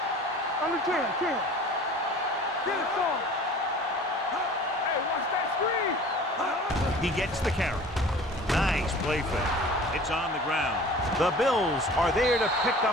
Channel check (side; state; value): both; normal; correlation 0.44